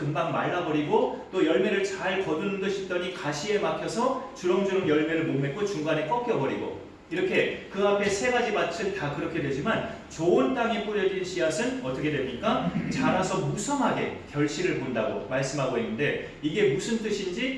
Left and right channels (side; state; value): both; identical; correlation 1.00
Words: 말라버리고 또 열매를 잘 거두는 듯 싶더니 가시에 막혀서 주렁주렁 열매를 못 맺고 중간에 꺾여버리고 이렇게 그 앞에 세 가지 밭은 다 그렇게 되지만 좋은 땅에 뿌려진 씨앗은 어떻게 됩니까? 자라서 무성하게 결실을 본다고 말씀하고 있는데 이게 무슨